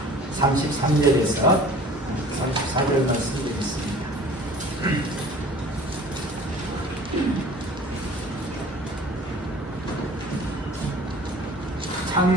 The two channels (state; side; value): normal; both; correlation 0.46